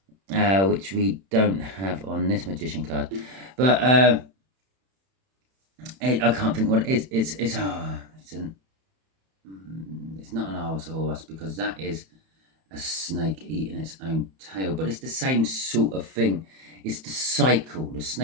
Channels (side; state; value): left; late; 31 ms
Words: which we don't have on this magician card, but I can't think what it is. It's not an Allosaurus because that is a snake eating its own tail, but it's the same sort of thing. It's the cycle. The